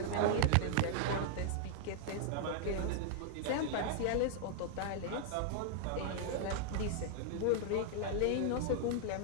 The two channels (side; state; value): both; different; correlation -0.01